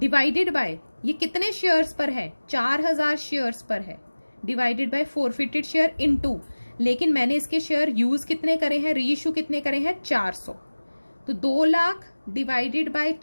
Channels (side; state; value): both; inverted; correlation -1.00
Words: बाय, ये कितने शेयर्स पर है? 4000 शेयर्स पर है, divided by forfeited share into, लेकिन मैंने इसके शेयर यूज कितने करे हैं, री इशू कितने करे हैं? 400। तो 2 lakh divided by